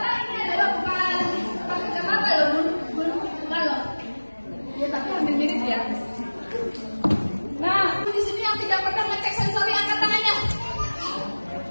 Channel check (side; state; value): both; inverted; correlation -1.00